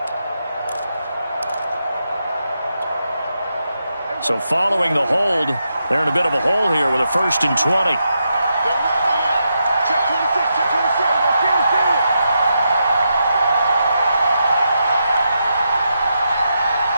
So following the hold, they're in a bit of a hole here with a 1st and 20.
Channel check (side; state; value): both; inverted; correlation -0.84